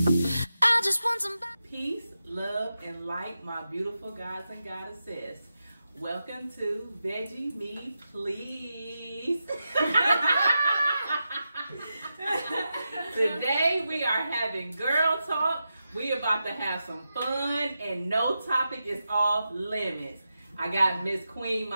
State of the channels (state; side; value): inverted; both; correlation -0.89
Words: I just want some peace, love, and light, my beautiful gods and goddesses. Welcome to Veggie Me Please. Today we are having girl talk. We about to have some fun and no topic is off limits. I got Miss Queen